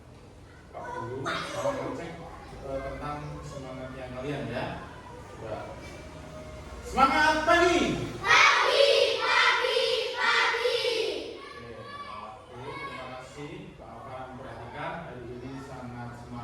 Pak Guru mau ngecek tentang semangatnya kalian ya. Coba. Semangat pagi. Pagi. Oke, terima kasih Pak Afan, perhatikan hari ini sangat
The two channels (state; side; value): identical; both; correlation 1.00